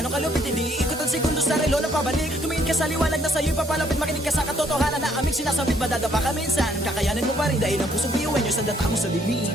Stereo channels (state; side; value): normal; both; correlation 0.68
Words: kalupit, hindi ikot ang segundo sa relo na pabalik. Tumingin ka sa liwanag na sa'yo'y papalapit, makinig ka sa katotohanan na aming sinasabit. Madadapa ka minsan, kakayanin mo pa rin dahil ang pusong biyuin nyo sa data mo sa dilim.